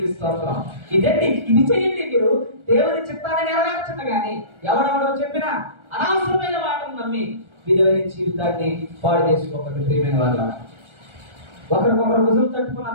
స్తోత్రం. ఇదండి, ఇది చేయండి. మీరు దేవుని చిత్తాన్ని నెరవేర్చండి. కానీ ఎవడెవడో చెప్పినా అనవసరమైన మాటను నమ్మి విలువైన జీవితాన్ని పాడు చేసుకోకండి. ప్రియమైన వాళ్ళ, ఒకరికొకరు భుజం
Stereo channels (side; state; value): left; late; 1.3 ms